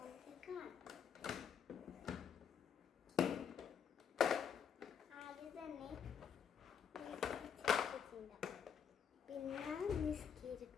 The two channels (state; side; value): quieter; right; 7.4 dB